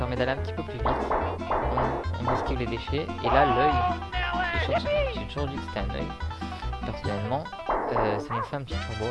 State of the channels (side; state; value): both; identical; correlation 1.00